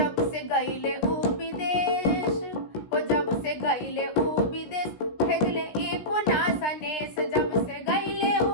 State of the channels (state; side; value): late; right; 16 ms